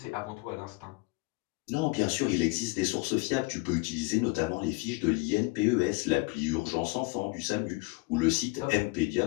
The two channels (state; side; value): quieter; right; 25.7 dB